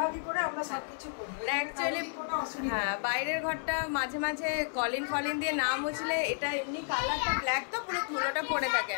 করে আমরা সবকিছু করি। অ্যাকচুয়ালি হ্যাঁ, বাইরের ঘরটা মাঝে মাঝে কলিন ফলিন দিয়ে না মুছলে এটা এমনি কালারটা ব্ল্যাক তো পুরো ধুলোটা পড়ে থাকে।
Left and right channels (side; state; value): right; silent; digital silence